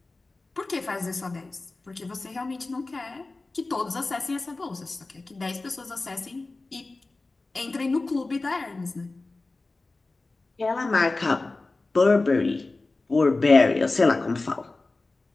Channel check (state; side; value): quieter; right; 3.3 dB